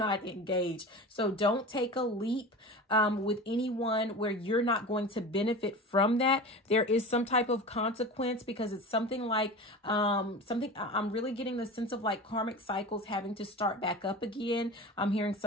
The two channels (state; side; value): normal; both; correlation 0.32